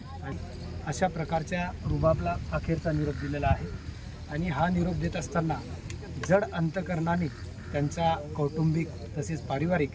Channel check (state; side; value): identical; both; correlation 1.00